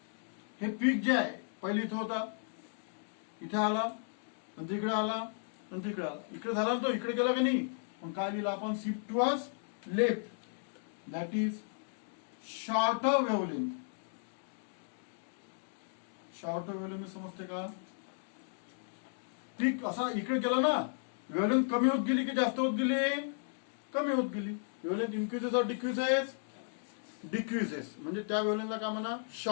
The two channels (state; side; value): silent; right; digital silence